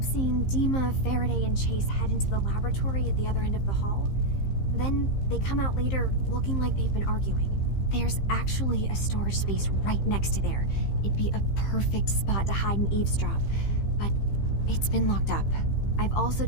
seeing DIMA, Faraday, and Chase head into the laboratory at the other end of the hall. Then they come out later looking like they've been arguing. There's actually a storage space right next to there. It'd be a perfect spot to hide and eavesdrop, but it's been locked up. I've also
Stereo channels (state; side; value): late; right; 15 ms